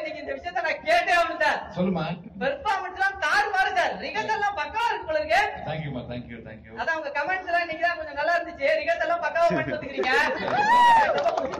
இந்த விஷயத்த நான் கேட்டே ஆகணும் சார். சொல்லுமா. பெர்ஃபார்மன்ஸ் எல்லாம் தாறுமாறு சார், ரிகர்சல் எல்லாம் பக்காவா இருக்கு போல இருக்கு. தேங்க்யூமா, தேங்க்யூ தேங்க்யூ. அதான் உங்க கமெண்ட்ஸ் எல்லாம் இன்னைக்கு தான் கொஞ்சம் நல்லா இருந்துச்சு, ரிகர்சல் எல்லாம் பக்காவா பண்ணிட்டு வந்துக்கிறீங்க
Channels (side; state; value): both; identical; correlation 1.00